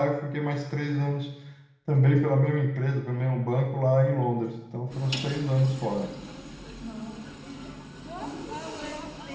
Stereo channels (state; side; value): identical; both; correlation 1.00